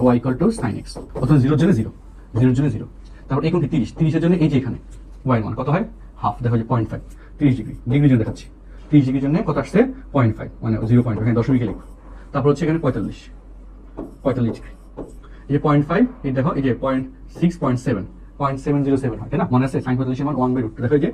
y = sin x। প্রথমে 0 এর জন্য 0, 0 এর জন্য 0, তারপর এই কোণটি 30, 30 এর জন্য এই যে এখানে y এর মান কত হয় হাফ, দেখো যে 0.5, 30 ডিগ্রি, ডিগ্রির জন্য দেখাচ্ছি। 30 ডিগ্রির জন্য কত আসছে 0.5, মানে 0.5, এখানে দশমিকে লিখো। তারপর হচ্ছে এখানে 45, 45 ডিগ্রি, এই যে 0.5, এই দেখো এই যে 0.6, 0.7, 0.707 হয়, তাই না? মনে আছে সাইন 45 এর মান 1/√2, দেখো এই যে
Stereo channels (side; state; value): both; identical; correlation 1.00